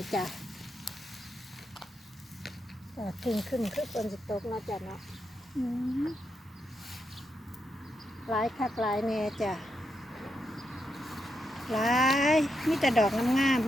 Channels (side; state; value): both; normal; correlation 0.83